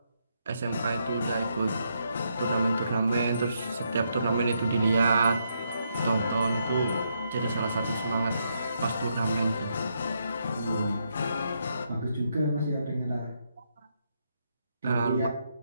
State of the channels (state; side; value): inverted; both; correlation -0.78